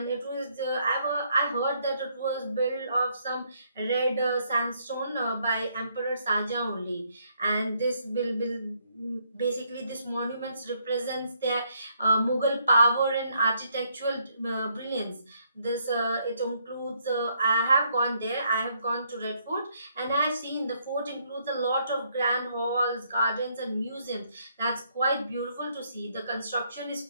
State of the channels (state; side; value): inverted; both; correlation -0.72